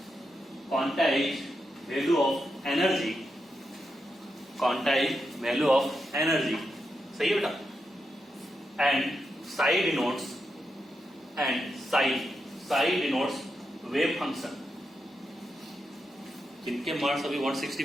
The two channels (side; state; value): both; normal; correlation 0.86